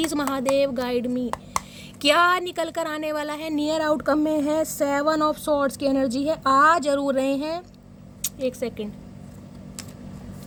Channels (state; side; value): identical; both; correlation 1.00